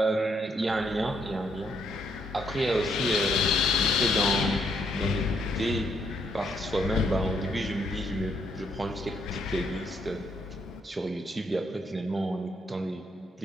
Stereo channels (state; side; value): normal; both; correlation 0.73